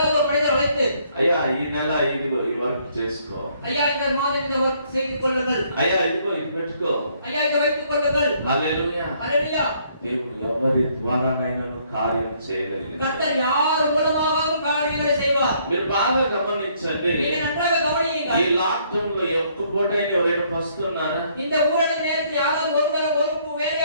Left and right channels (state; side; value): inverted; both; correlation -0.67